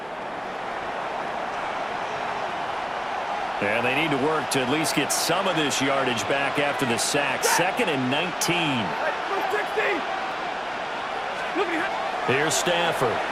And they need to work to at least get some of this yardage back after the sack. 2nd and 19. Here's Stafford.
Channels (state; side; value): identical; both; correlation 1.00